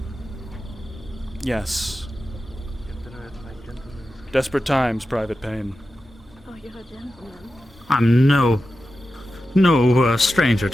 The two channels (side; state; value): both; normal; correlation 0.92